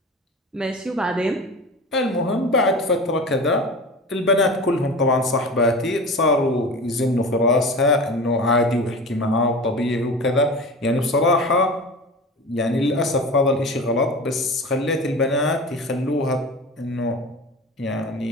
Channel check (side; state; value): both; normal; correlation 0.33